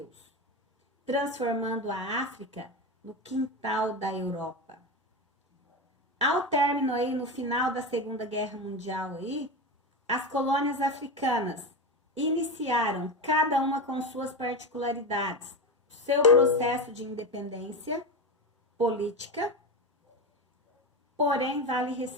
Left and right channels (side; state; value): both; normal; correlation 0.19